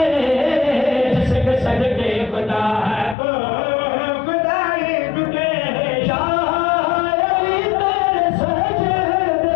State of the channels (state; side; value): drops out; right; at 3.2 s